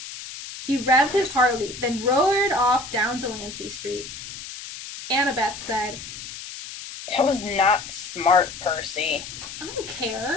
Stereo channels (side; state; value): left; noise; hiss, 11 dB below the sound